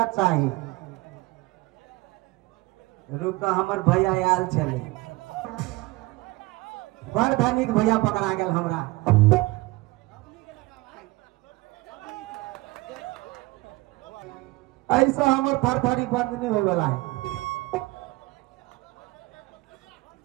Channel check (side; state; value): left; quieter; 21.4 dB